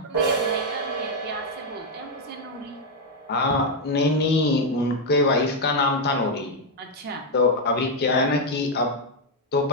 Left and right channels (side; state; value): both; normal; correlation 0.01